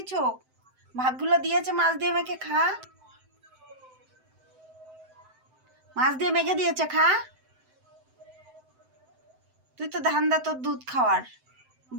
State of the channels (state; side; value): late; left; 7.8 ms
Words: চোখ? ভাতগুলো দিয়েছে, মাছ দিয়ে মেখে খা। মাছ দিয়ে মেখে দিয়েছে, খা। তুই তো ধান্দা তোর দুধ খাওয়ার।